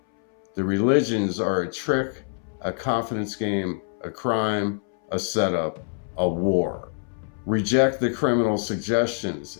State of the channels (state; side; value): silent; right; 62 dB below the other